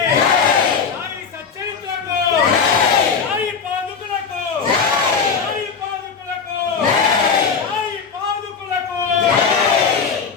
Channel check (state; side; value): quieter; right; 5.9 dB